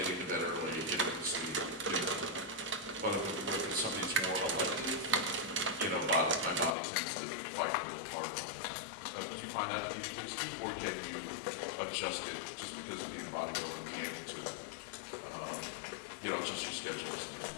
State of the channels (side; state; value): right; drops out; at 6.8 s